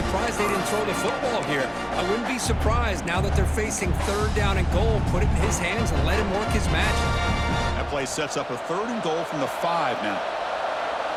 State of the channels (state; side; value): identical; both; correlation 1.00